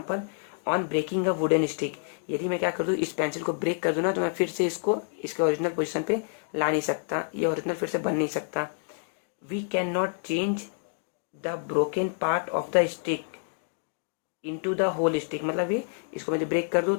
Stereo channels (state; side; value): silent; right; digital silence